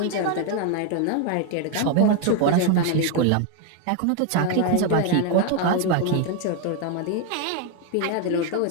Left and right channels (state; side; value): different; both; correlation 0.01